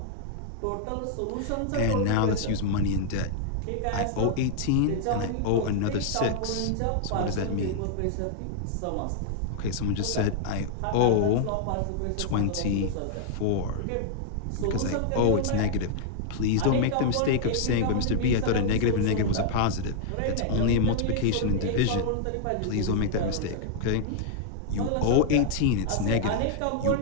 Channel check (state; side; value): different; both; correlation 0.00